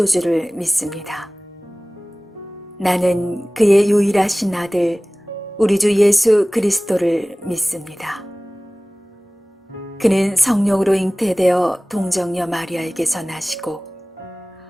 믿습니다. 나는 그의 유일하신 아들 우리 주 예수 그리스도를 믿습니다. 그는 성령으로 잉태되어 동정녀 마리아에게서 나시고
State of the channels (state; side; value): normal; both; correlation 0.98